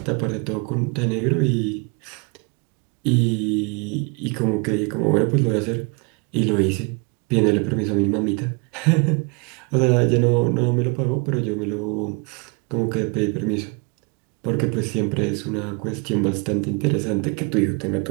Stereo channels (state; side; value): quieter; left; 32.2 dB